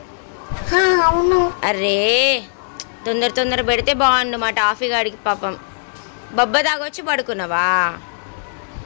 అవును. అరే తొందర తొందర పెడితే బాగుండు మా టాఫీ గాడికి. పాపం బొబ్బ తాగొచ్చి పడుకున్నావా?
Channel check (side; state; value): right; silent; digital silence